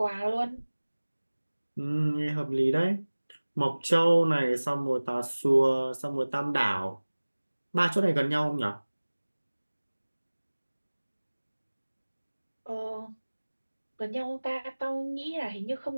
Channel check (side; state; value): both; inverted; correlation -1.00